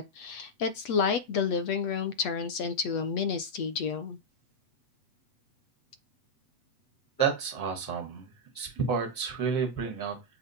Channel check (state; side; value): late; right; 8.3 ms